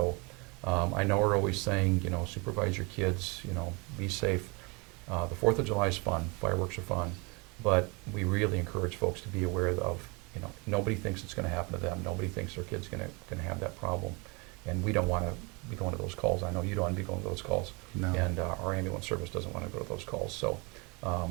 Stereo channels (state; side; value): quieter; left; 29.1 dB